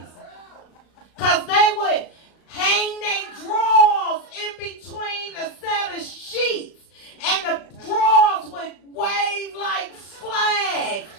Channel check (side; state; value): right; late; 36 ms